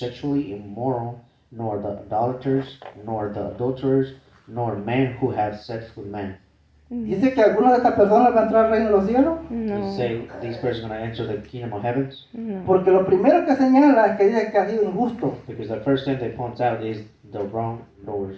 immoral, nor the idolaters, nor the adulterers, nor men who have sex with men. Dice que alguna de estas personas va a entrar al reino de los cielos. You No, say these persons are going to enter the kingdom of heavens? no. Porque lo primero que señala es que dice que ha sido injusto. Because the first thing they point out is the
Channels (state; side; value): identical; both; correlation 1.00